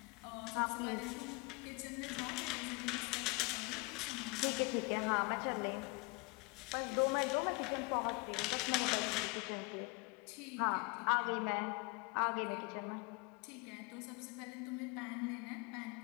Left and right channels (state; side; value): quieter; right; 27.9 dB